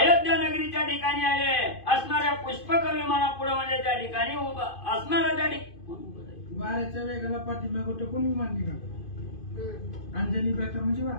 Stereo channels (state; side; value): late; right; 2.5 ms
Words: नगरीच्या ठिकाणी आले. असणाऱ्या पुष्पक विमानापुढे म्हणजे त्या ठिकाणी उभा असणारा त्या वाऱ्याच्या वेगाला पाठीमागे टेकून विमान निघालं. अंजनी व्रत म्हणजे वा